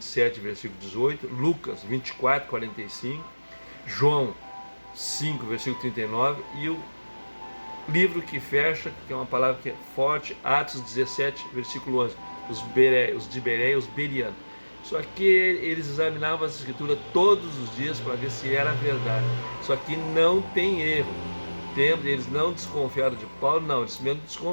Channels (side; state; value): both; inverted; correlation -1.00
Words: versículo 18, Lucas 24:45, João 5, versículo 39, e o livro que fecha, que é uma palavra que é forte, Atos 17, versículo 11, os de Bereia, os berianos. Só que eles examinavam as escrituras todos os dias para ver se era verdade. Só que não tem erro. Eles não desconfiaram de Paulo, não, eles mesmo